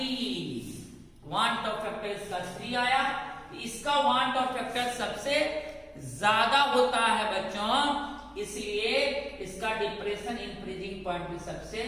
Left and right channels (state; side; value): identical; both; correlation 1.00